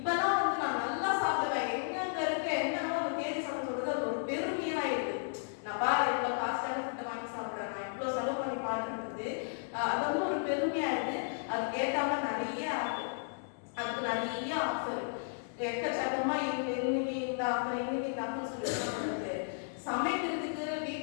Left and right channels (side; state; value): right; silent; digital silence